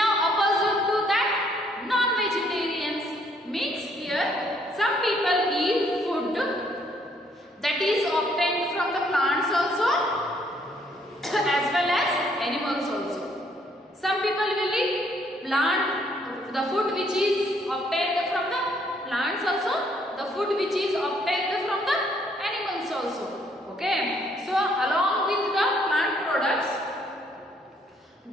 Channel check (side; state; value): both; normal; correlation 0.67